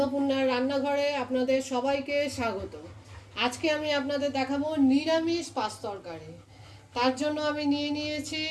রান্নাঘরে আপনাদের সবাইকে স্বাগত। আজকে আমি আপনাদের দেখাবো নিরামিষ পাঁচ তরকারি। তার জন্য আমি নিয়ে নিয়েছি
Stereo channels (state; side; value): identical; both; correlation 1.00